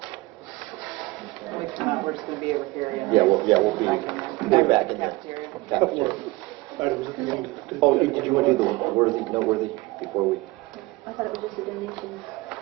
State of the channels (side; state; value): left; quieter; 21.8 dB